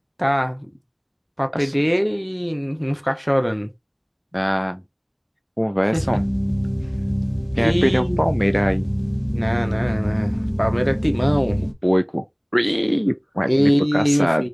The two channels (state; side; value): identical; both; correlation 1.00